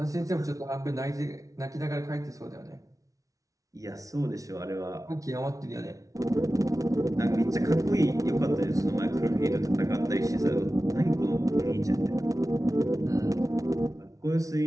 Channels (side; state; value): left; late; 0.17 ms